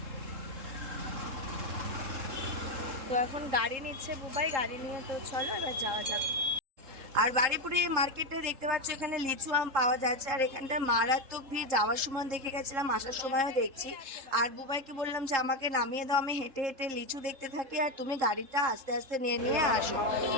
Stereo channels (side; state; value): left; late; 3.7 ms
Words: তো এখন গাড়ি নিচ্ছে বুবাই, গাড়ি নিয়ে তো চলো এবার যাওয়া যাক। আর বারুইপুরে মার্কেটে দেখতে পাচ্ছ এখানে লিচু আম পাওয়া যাচ্ছে। আর এখানটা মারাত্মক ভিড়, যাওয়ার সময় দেখে গেছিলাম, আসার সময়ও দেখছি। আর বুবাইকে বললাম যে আমাকে নামিয়ে দাও, আমি হেঁটে হেঁটে লিচু দেখতে থাকি আর তুমি গাড়িটা আস্তে আস্তে নিয়ে নিয়ে আসো।